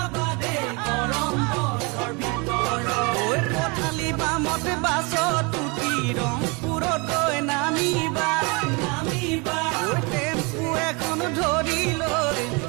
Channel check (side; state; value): left; quieter; 29.6 dB